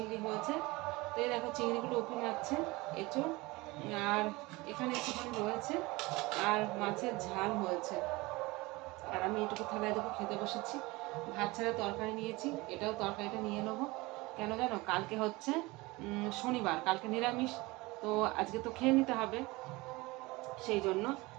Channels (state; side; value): quieter; left; 22.5 dB